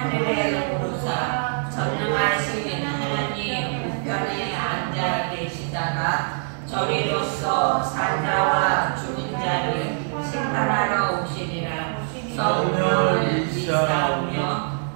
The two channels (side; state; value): left; silent; 63 dB below the other